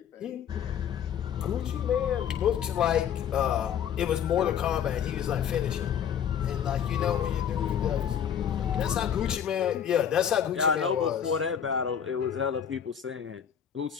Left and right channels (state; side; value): quieter; right; 8.6 dB